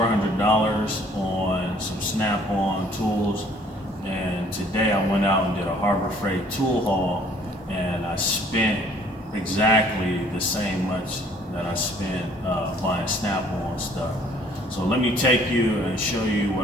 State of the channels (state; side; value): normal; both; correlation 0.58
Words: on some Snap-on tools, and today I went out and did a Harbor Freight tool haul, and I spent exactly the same much that I spent buying Snap-on stuff. So let me take you and show you